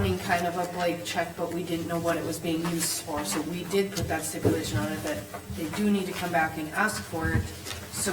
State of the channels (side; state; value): both; identical; correlation 1.00